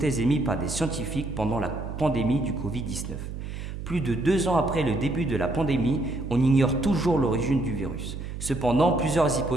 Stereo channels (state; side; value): noise; right; hum, 8 dB below the sound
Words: émises par des scientifiques pendant la pandémie du Covid-19. Plus de 2 ans après le début de la pandémie, on ignore toujours l'origine du virus. Cependant, plusieurs